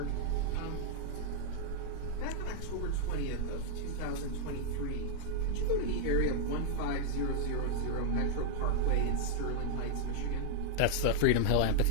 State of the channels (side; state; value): both; different; correlation 0.00